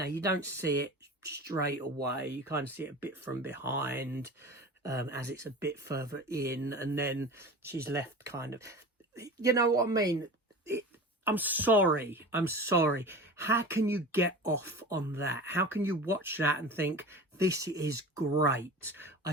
you don't see it straight away. You kind of see it a bit from behind, as it's a bit further in, and then she's left kind of, you know what I mean? I'm sorry. How can you get off on that? How can you watch that and think, this is great? I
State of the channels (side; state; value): both; normal; correlation 0.34